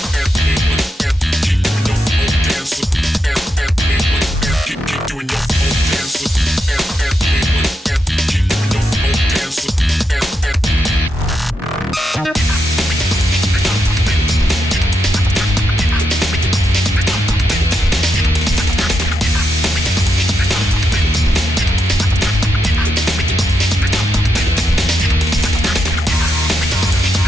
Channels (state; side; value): normal; both; correlation 0.83